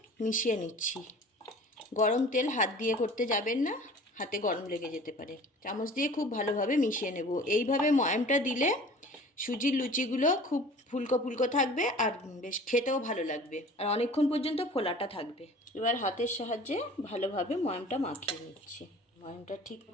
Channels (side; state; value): both; normal; correlation 0.45